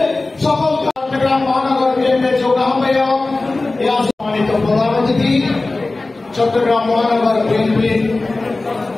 সকল চট্টগ্রাম মহানগর বিএনপির যোগ্য আহ্বায়ক, সম্মানিত প্রধান অতিথি, চট্টগ্রাম মহানগর বিএনপির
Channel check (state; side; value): quieter; right; 3.2 dB